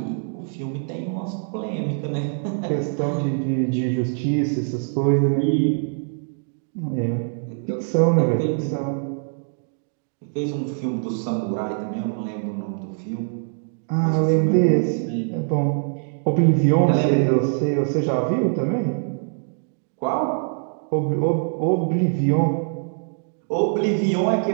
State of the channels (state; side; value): silent; left; 63 dB below the other